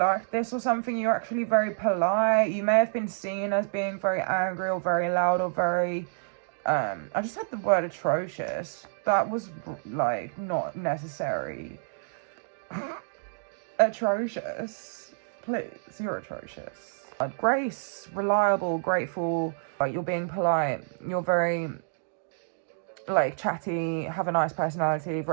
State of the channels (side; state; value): left; silent; digital silence